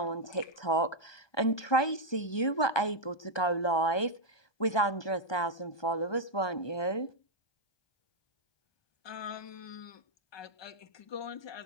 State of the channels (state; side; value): late; right; 1.2 ms